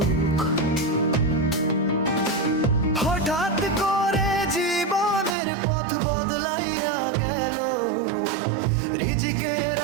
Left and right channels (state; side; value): drops out; left; at 5.4 s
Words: হঠাৎ করে জীবনের পথ বদলাইয়া গেল, রিজিকের